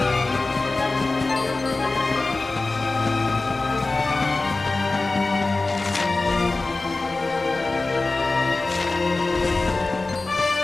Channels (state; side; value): quieter; right; 3.4 dB